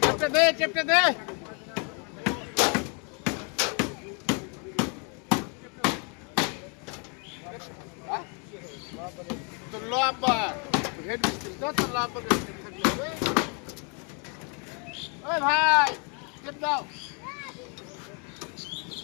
টেপটা দে, টেপটা দে। তো লম্বা হেড মিস্ত্রি তো তোর লম্বা থাকলে ওই ভাই টেপ দাও।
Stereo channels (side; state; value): right; quieter; 36.5 dB